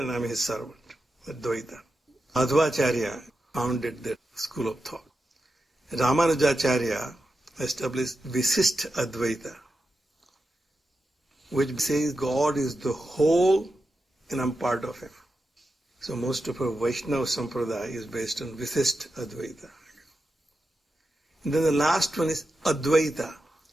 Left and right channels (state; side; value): normal; both; correlation 0.89